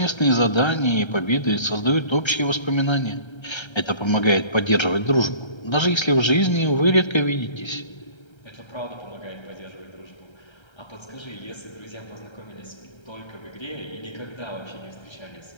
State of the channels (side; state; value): right; late; 1.3 ms